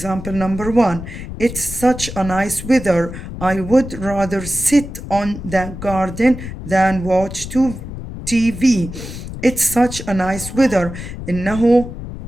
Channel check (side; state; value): left; noise; rumble, 10 dB below the sound